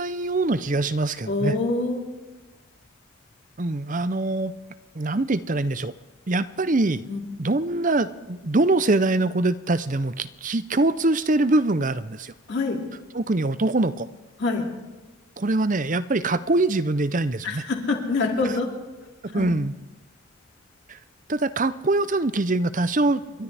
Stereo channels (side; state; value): both; normal; correlation 0.50